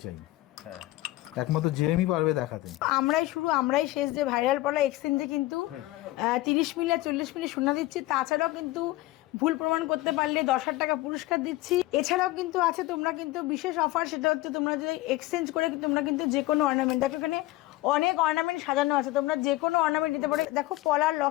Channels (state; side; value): quieter; right; 18.1 dB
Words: চাই। একমাত্র জেএমই পারবে দেখাতে। আমরাই শেষ যে ভাইরাল পলা এক্সচেঞ্জে কিন্তু 30 মিলি আর 40 মিলি সোনা দিচ্ছি। তাছাড়াও কিন্তু ভুল প্রমাণ করতে পারলে 10,000 টাকা পুরস্কার দিচ্ছি। এছাড়াও কিন্তু আছে তোমরা কিন্তু বিশেষ অফার, সেটা হচ্ছে তোমরা যদি এক্সচেঞ্জ করে তোমরা কিন্তু যে কোনো অর্নামেন্ট, দেখো এখানে অনেক অর্নামেন্ট সাজানো আছে, তোমরা যে কোনো অর্নামেন্ট নিতে পারো। দেখো পলার